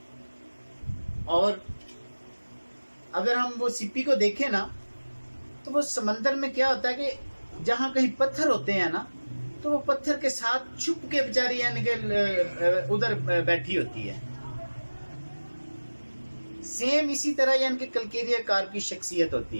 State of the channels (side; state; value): both; inverted; correlation -1.00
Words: और अगर हम वो सिप्पी को देखें ना, तो वो समंदर में क्या होता है कि जहां कहीं पत्थर होते हैं ना, तो वो पत्थर के साथ छुप के बेचारी यानी कि उधर बैठी होती है। सेम इसी तरह यानी कि कलकेरिया कार की शख्सियत होती